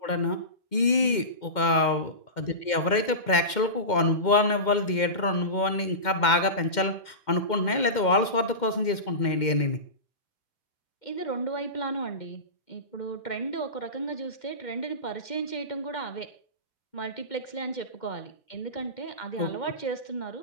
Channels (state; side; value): late; right; 2.1 ms